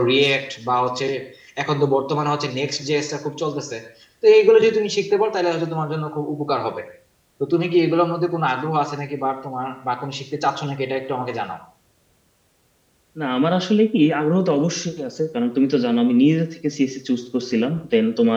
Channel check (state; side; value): identical; both; correlation 1.00